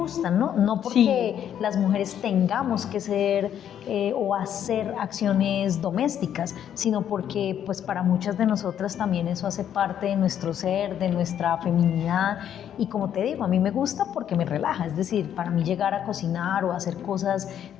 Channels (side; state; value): right; quieter; 9.7 dB